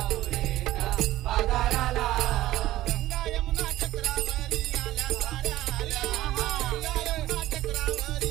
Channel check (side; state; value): left; quieter; 15.4 dB